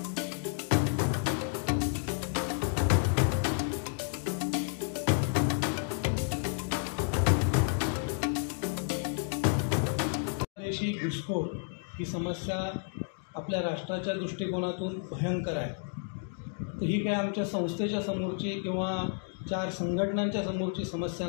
देशी घुसखोर ही समस्या आपल्या राष्ट्राच्या दृष्टिकोनातून भयंकर आहे। तर ही काय आमच्या संस्थेच्या समोरची किंवा 4 संघटनांच्या समोरची समस्या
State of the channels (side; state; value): right; silent; 57 dB below the other